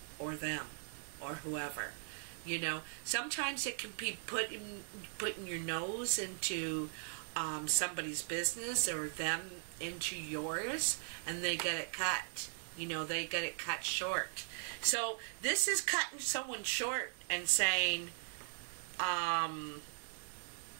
or them or whoever, you know. Sometimes it can be putting your nose into somebody's business, or them into yours, and they get it cut, you know, they get it cut short. So this is cutting someone short and saying, you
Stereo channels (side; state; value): left; silent; digital silence